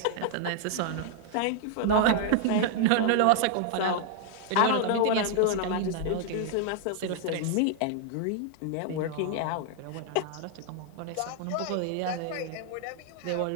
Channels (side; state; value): both; different; correlation 0.00